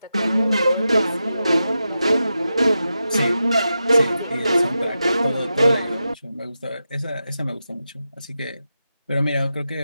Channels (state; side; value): inverted; both; correlation -0.90